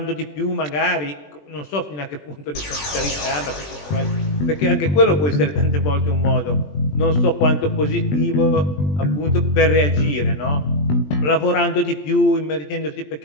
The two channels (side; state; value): right; late; 20 ms